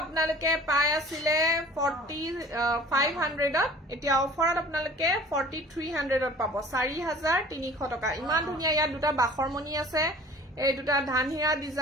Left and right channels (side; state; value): both; normal; correlation 0.46